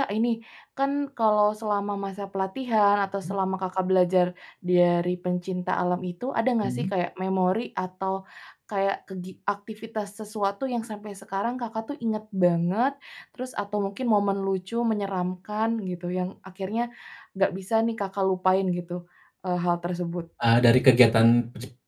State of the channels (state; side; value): identical; both; correlation 1.00